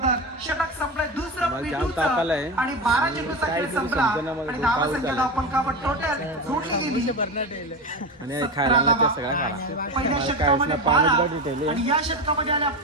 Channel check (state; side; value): normal; both; correlation 0.20